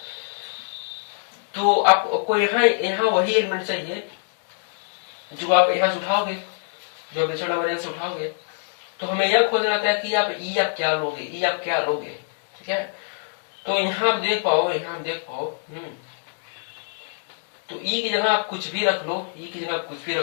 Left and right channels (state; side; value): silent; right; digital silence